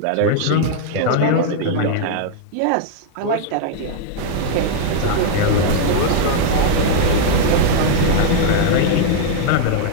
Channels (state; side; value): different; both; correlation -0.01